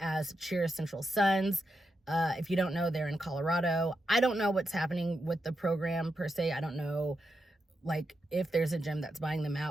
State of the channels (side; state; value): both; normal; correlation 0.86